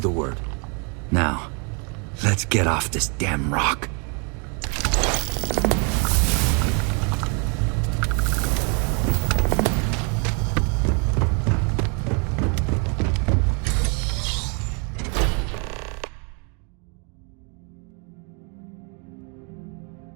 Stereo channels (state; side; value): quieter; left; 35.8 dB